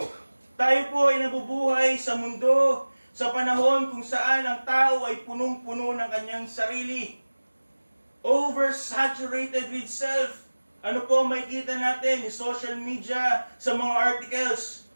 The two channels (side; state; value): both; inverted; correlation -1.00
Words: Tayo po ay nabubuhay sa mundo sa panahon kung saan ang tao ay punong-puno ng kanyang sarili. Oversaturated with self. Ano po makikita natin sa social media, sa mga articles?